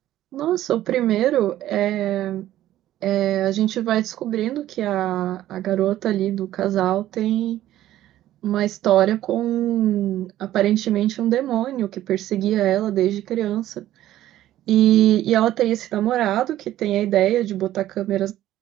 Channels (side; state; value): left; quieter; 13.5 dB